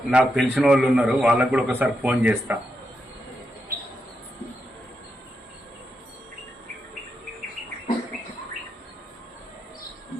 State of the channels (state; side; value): normal; both; correlation 0.85